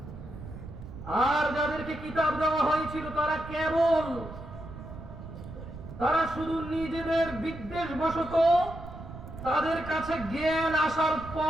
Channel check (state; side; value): noise; right; rumble, 12 dB below the sound